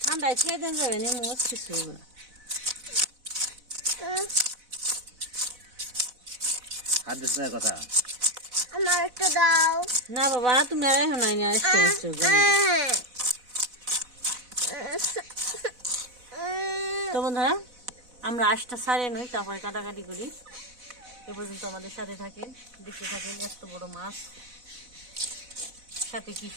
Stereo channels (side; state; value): left; late; 4.0 ms